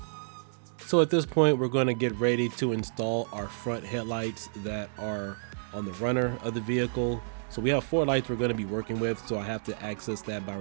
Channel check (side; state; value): left; silent; digital silence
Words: So at this point, we're going to get ready to install our front headlights that are on the runner of the vehicle. So we have 4 lights we're going to be working with, so I have to access that by